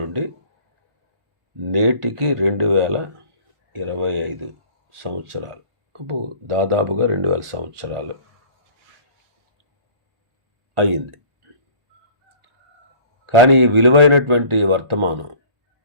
నేటికి 2025 సంవత్సరాలు, దాదాపుగా 2000 సంవత్సరాలు అయ్యింది. కానీ ఈ విలువైనటువంటి వర్తమానం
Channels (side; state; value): left; late; 1.4 ms